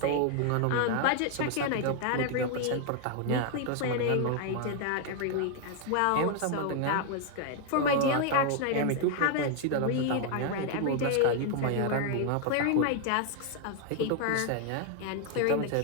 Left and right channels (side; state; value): both; different; correlation 0.01